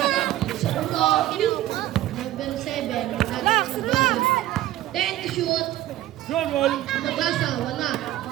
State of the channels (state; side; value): quieter; left; 14.5 dB